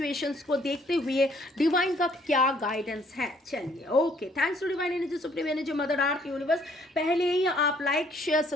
को देखते हुए डिवाइन का क्या गाइडेंस है। चलिए, okay, thanks to divine energy, supreme energy, mother earth universe. पहले ही आप लाइक शेयर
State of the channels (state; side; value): normal; both; correlation 0.63